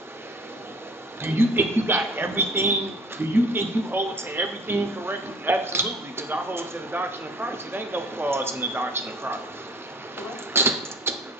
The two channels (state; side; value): normal; both; correlation 0.49